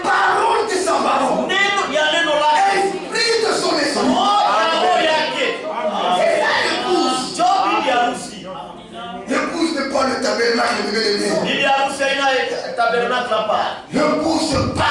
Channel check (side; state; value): both; identical; correlation 1.00